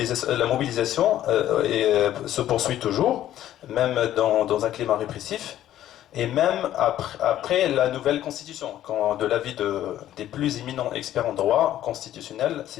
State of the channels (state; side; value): quieter; right; 12.5 dB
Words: mobilisation se poursuit toujours, même dans un climat répressif. Et même après la nouvelle constitution, quand de l'avis des plus éminents experts en droit constitutionnel,